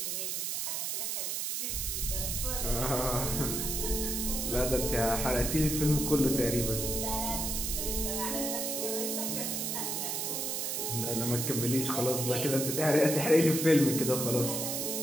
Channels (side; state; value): right; noise; hiss, 1 dB below the sound